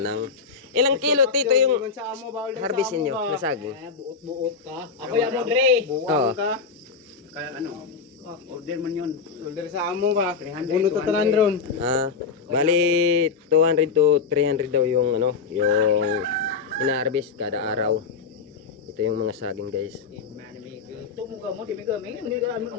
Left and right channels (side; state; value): right; quieter; 5.4 dB